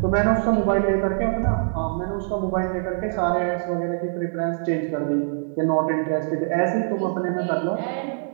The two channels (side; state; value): left; silent; 61 dB below the other